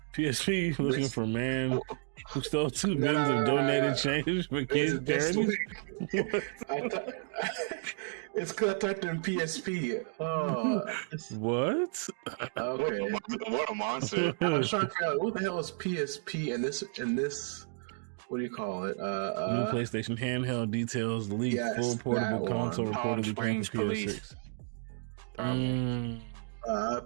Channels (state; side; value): silent; left; 56 dB below the other